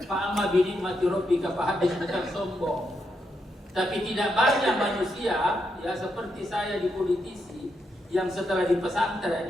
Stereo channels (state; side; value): normal; both; correlation 0.81